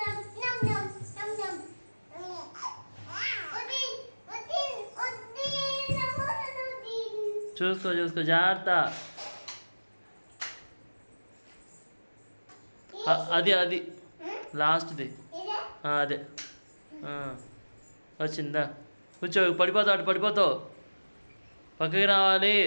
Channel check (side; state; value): both; inverted; correlation -1.00